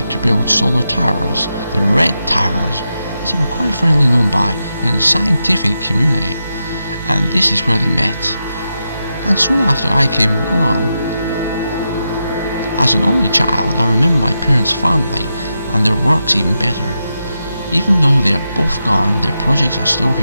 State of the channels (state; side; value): inverted; both; correlation -0.87